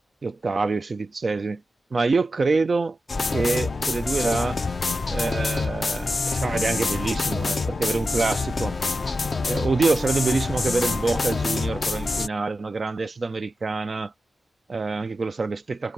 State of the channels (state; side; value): normal; both; correlation 0.91